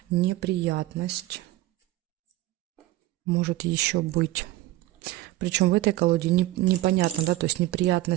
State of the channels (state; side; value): quieter; left; 16.6 dB